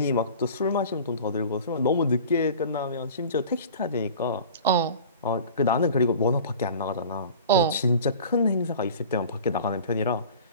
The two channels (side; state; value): both; inverted; correlation -0.40